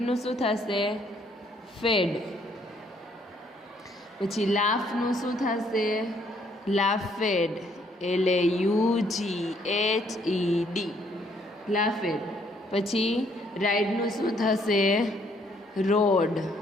શું થશે? ફેડ. પછી લાફનું શું થશે? લાફેડ, LAUGHED, લાફેડ. પછી રાઇડનું શું થશે? રોડ.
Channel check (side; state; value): both; normal; correlation 0.67